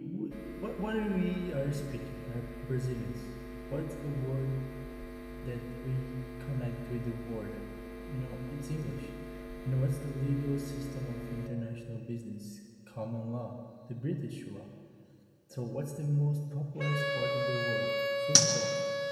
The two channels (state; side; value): identical; both; correlation 1.00